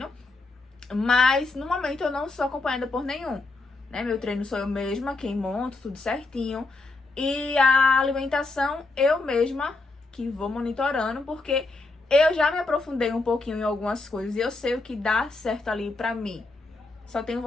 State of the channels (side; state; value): right; quieter; 3.4 dB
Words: Mas no momento eu não sou acompanhada por nenhum, né? Meu treino sou eu mesma quem monto, tudo certinho. E a alimentação eu mesma que vou monitorando, porque eu já me aprofundei um pouquinho em algumas coisas e eu sei o que dá certo ali pra mim. Só tenho